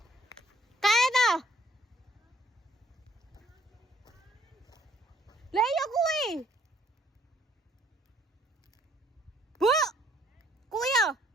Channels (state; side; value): normal; both; correlation 0.64